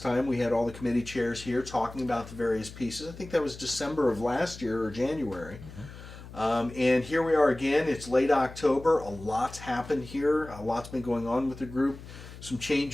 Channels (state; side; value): noise; left; hum, 15 dB below the sound